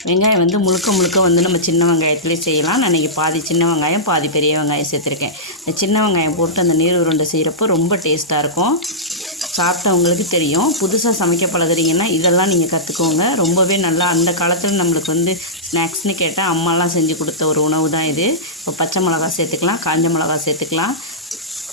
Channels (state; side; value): normal; both; correlation -0.15